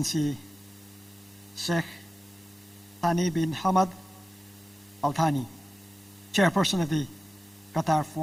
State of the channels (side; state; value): both; normal; correlation 0.96